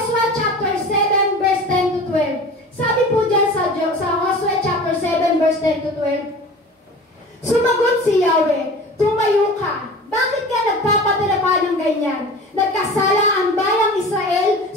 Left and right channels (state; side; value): normal; both; correlation 0.38